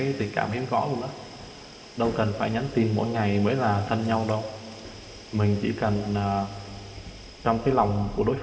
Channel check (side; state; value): both; identical; correlation 1.00